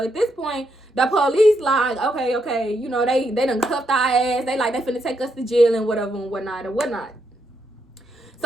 at this point, the police like, okay, you know, they done cuffed our ass. They like, they finna take us to jail and whatever and whatnot.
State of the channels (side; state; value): both; normal; correlation 0.79